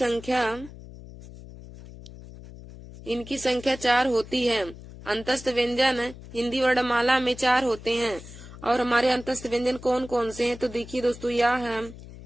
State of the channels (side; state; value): left; noise; hum, 16 dB below the sound